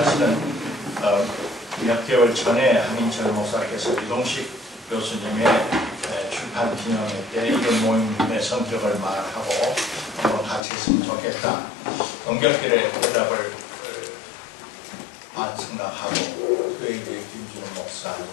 몇 개월 전에 한인철 목사께서 이동식 교수님의 출판 기념회 때 이런 모임의 성격을 말하고 같이 했으면 좋겠다. 연결길에 대답을 생각하고, 그에 이제 김준호 목사,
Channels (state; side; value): drops out; right; at 10.6 s